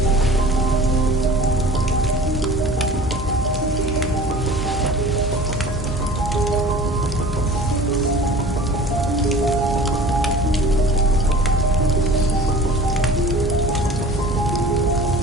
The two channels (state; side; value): normal; both; correlation 0.43